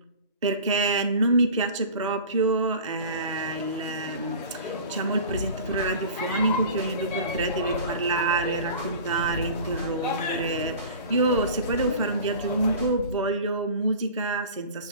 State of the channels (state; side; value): inverted; both; correlation -0.39